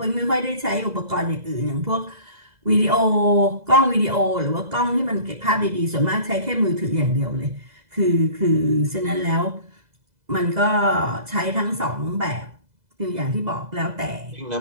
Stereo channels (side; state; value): left; late; 2.0 ms